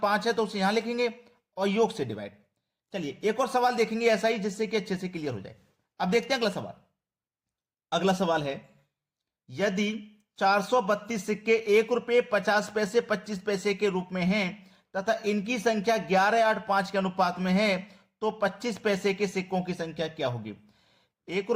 5 है तो उसे यहां लिखेंगे और योग से डिवाइड। चलिए एक और सवाल देखेंगे ऐसा ही, जिससे कि अच्छे से क्लियर हो जाए। अब देखते हैं अगला सवाल। अगला सवाल है, यदि 432 सिक्के 1 रुपए 50 पैसे 25 पैसे के रूप में हैं तथा इनकी संख्या 11, 8, 5 के अनुपात में है, तो 25 पैसे के सिक्कों की संख्या क्या होगी? 1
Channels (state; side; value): identical; both; correlation 1.00